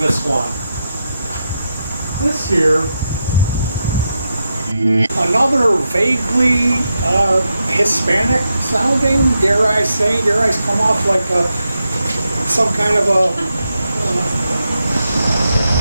one. This here, another vaguely Hispanic sounding, dare I come off like some kind of a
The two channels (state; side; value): inverted; both; correlation -0.86